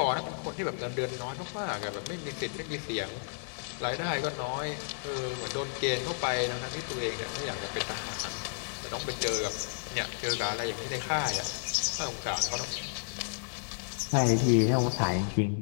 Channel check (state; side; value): silent; right; digital silence